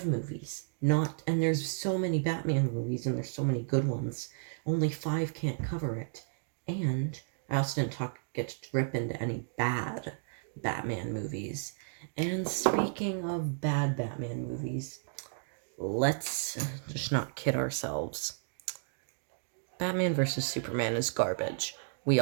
movies. And there's so many Batman movies and there's so many good ones. Only 5 can't cover it. And I also didn't get to rip into any bad Batman movies. And speaking of bad Batman movies, let's just not kid ourselves. Batman vs. Superman is garbage. We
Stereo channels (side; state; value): left; silent; digital silence